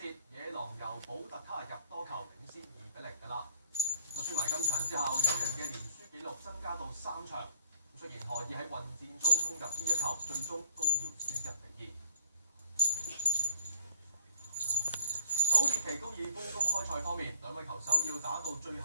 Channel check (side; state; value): both; inverted; correlation -0.61